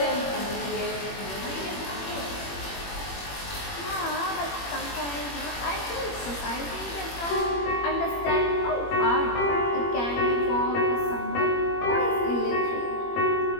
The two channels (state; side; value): late; right; 21 ms